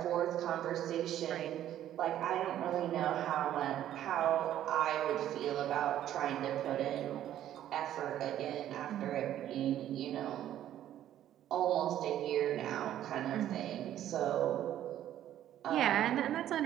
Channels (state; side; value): quieter; left; 11.8 dB